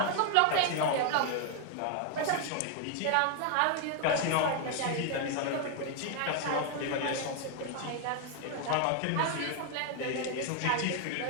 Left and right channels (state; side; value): different; both; correlation 0.01